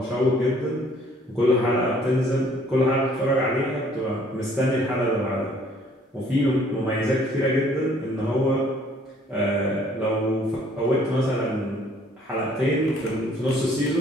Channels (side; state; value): both; normal; correlation 0.60